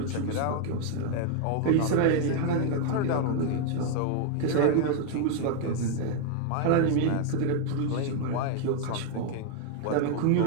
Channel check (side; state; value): both; different; correlation 0.01